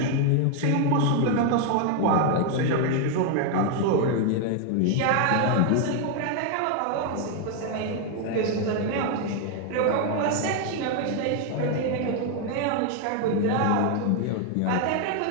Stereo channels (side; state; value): both; different; correlation 0.01